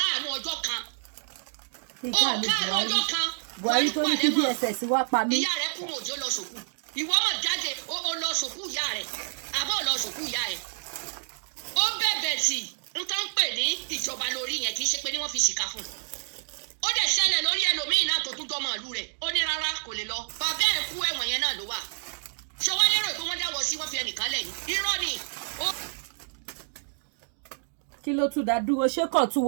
ọjọ́ kan Buhari tó ní kí DSS wá pa mí. ìyá rẹ̀ kú òjò lọ sòkú ìwọ mọ̀ jáde ó lọ sòkú ìyá rẹ̀ àbọ̀ lọ sòkú ìyá ẹ̀ ó bẹ̀bẹ̀ sí n tó ń pè ní ìjọba lórí yẹn kì í ṣe pé ní wọ́n fi ṣìkà fún un ó dẹ̀ ṣẹlẹ̀ lórí ẹlòmíín náà tó tún jọmọ ìlú rẹ̀ ó ní rárá kò lè lọ bàbá ẹ̀ kú ẹ̀wọ̀n yẹn náà ló wà ṣọwọ́ lérò pé wọ́n dáwọ́ sí wọ́n fi ẹnìkan lẹ̀ ní irọ́ ni kí ló tún dá dúró ṣé kàn tún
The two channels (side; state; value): left; silent; digital silence